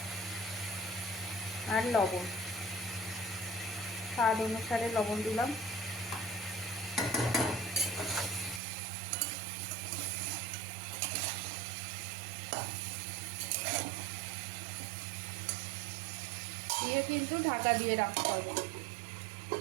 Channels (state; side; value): drops out; left; at 8.6 s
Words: আর লবণ, স্বাদ অনুসারে লবণ দিলাম। দিয়ে কিন্তু ঢাকা দিয়ে রাখতে হবে।